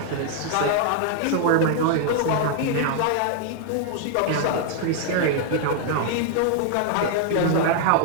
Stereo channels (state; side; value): different; both; correlation 0.00